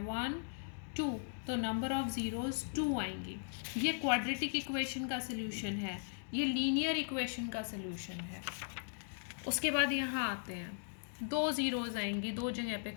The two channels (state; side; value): silent; right; digital silence